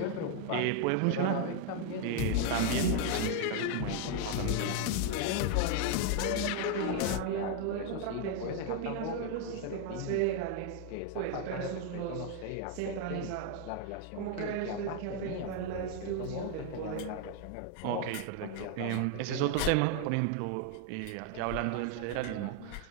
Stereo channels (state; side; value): different; both; correlation 0.01